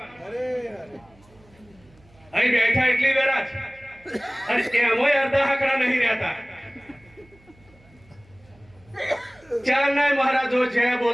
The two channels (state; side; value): noise; right; hum, 28 dB below the sound